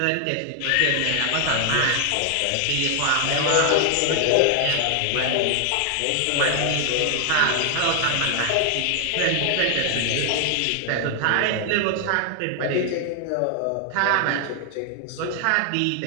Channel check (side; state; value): both; different; correlation 0.00